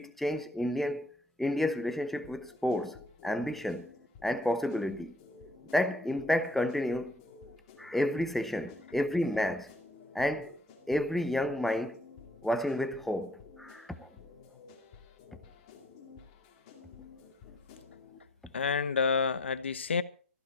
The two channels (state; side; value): normal; both; correlation 0.61